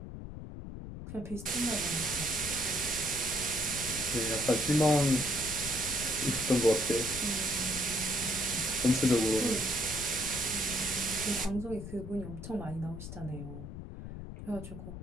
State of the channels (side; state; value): left; noise; rumble, 10 dB below the sound